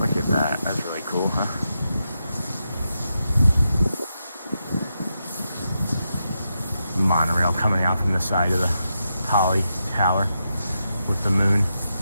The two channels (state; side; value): inverted; both; correlation -0.86